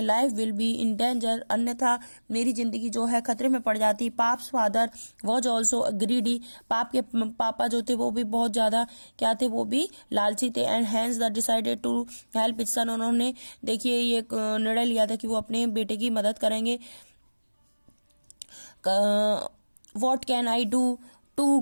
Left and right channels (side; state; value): both; inverted; correlation -1.00